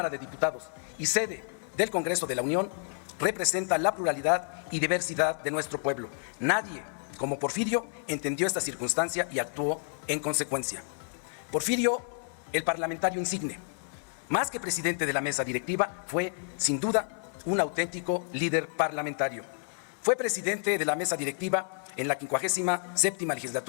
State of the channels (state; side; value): silent; right; 58 dB below the other